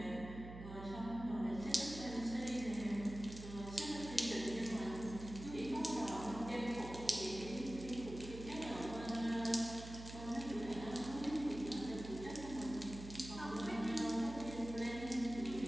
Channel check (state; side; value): noise; right; hum, 11 dB below the sound